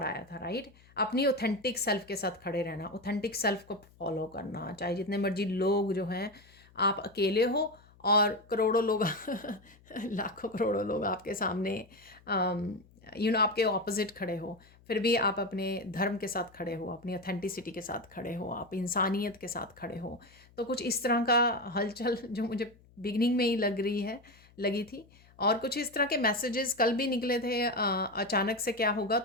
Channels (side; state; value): left; noise; hum, 27 dB below the sound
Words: आया था, राइट। अपनी ऑथेंटिक सेल्फ के साथ खड़े रहना, ऑथेंटिक सेल्फ को फॉलो करना, चाहे जितने मर्जी लोग जो हैं, आप अकेले हो और करोड़ों लोग लाखों करोड़ों लोग आपके सामने आपके ऑपोजिट खड़े हो, फिर भी आप अपने धर्म के साथ खड़े हो, अपनी ऑथेंटिसिटी के साथ खड़े हो, आप इंसानियत के साथ खड़े हो। तो कुछ इस तरह का हलचल जो मुझे बिगनिंग में ही लगी थी। और कुछ इस तरह के मैसेजेस कल भी निकले थे। अचानक से क्या होगा,